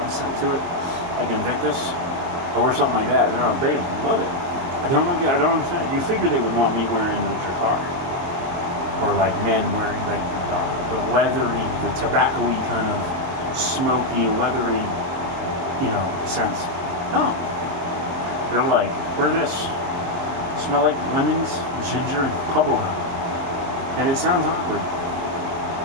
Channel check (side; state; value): left; late; 22 ms